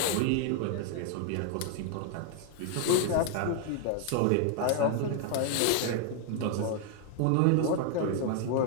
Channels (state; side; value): different; both; correlation 0.00